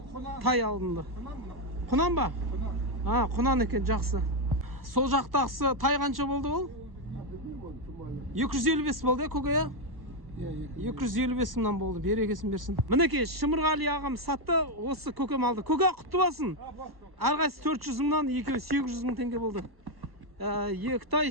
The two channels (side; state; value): left; late; 1.1 ms